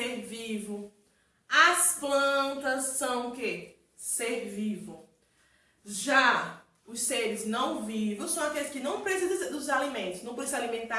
vivo. As plantas são o quê? Ser vivo. Já os seres não vivos são aqueles que não precisam dos alimentos, não precisam se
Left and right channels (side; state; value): both; identical; correlation 1.00